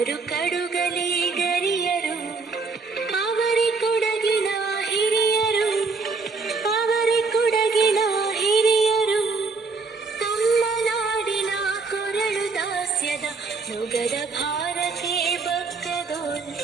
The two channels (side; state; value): left; quieter; 4.3 dB